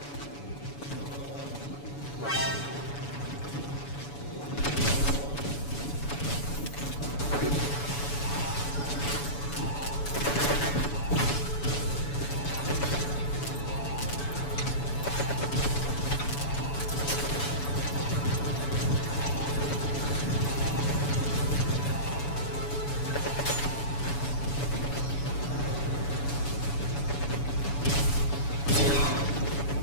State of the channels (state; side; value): late; right; 7.0 ms